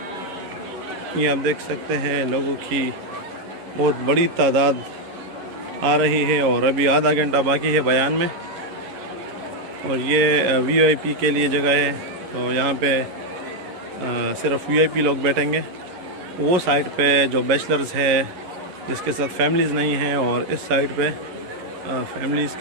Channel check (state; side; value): late; left; 11 ms